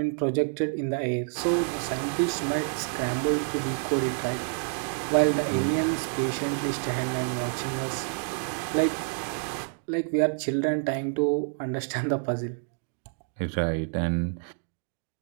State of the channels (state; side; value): silent; left; 59 dB below the other